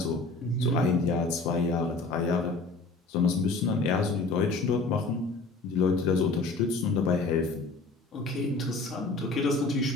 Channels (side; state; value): right; quieter; 3.5 dB